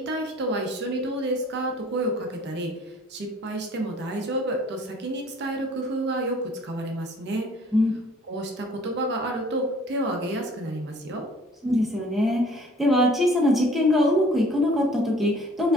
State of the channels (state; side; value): normal; both; correlation 0.53